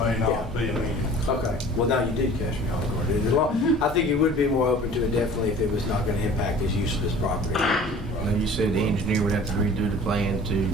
not be amenable. Okay. Well, now you did catch me off guard. I think he would be more open to it definitely if it was not going to impact his use of this property. And you said the engineer would have to redo the plan to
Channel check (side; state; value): both; normal; correlation 0.46